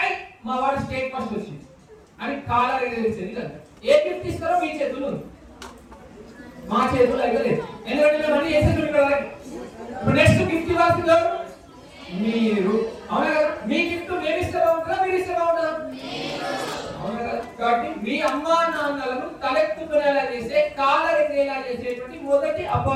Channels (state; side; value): identical; both; correlation 1.00